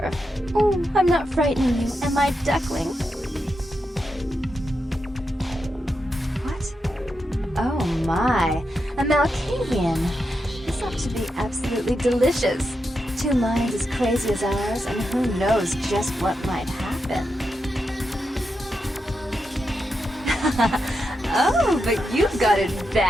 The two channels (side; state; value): both; normal; correlation 0.86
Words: Oh, I'm not frightening you, am I, duckling? What? Oh my, a Malkavian. This ought to be absolutely delicious. Two minds as crazy as ours, and who knows just what might happen. Oh, but you've got it